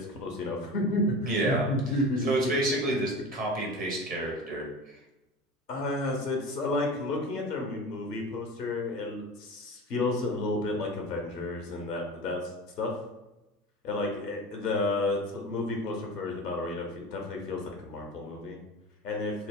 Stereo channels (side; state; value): both; normal; correlation 0.33